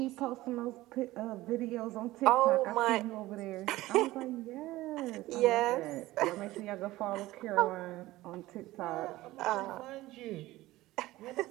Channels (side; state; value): left; quieter; 17.6 dB